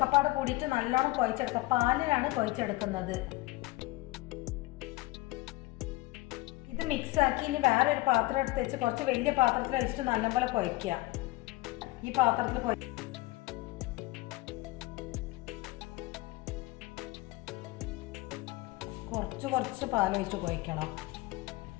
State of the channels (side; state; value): right; quieter; 20.1 dB